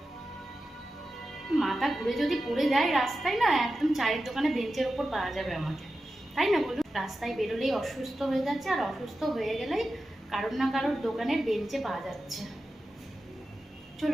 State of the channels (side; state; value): both; normal; correlation 0.92